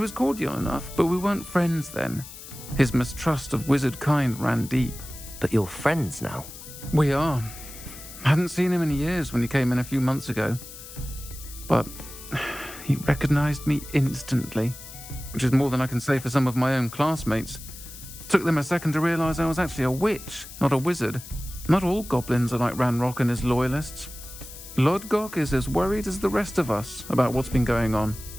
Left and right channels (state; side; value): noise; left; hiss, 14 dB below the sound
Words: cordial enough, but we weren't friends then. His mistrust of wizard kind ran deep. But you're friends now? We are. Hadn't seen him in years when he came in a few months ago. But he recognized me instantly, which is more than I can say for some of my own classmates. Took them a second to realize I was actually a witch, not a wizard. Not all goblins are like Ranrock and his loyalists. Lodgok is as worried as the rest of us about what's been going on.